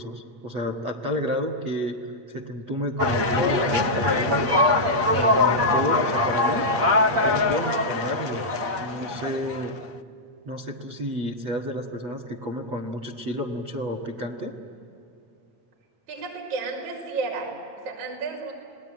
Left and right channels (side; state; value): left; late; 8.5 ms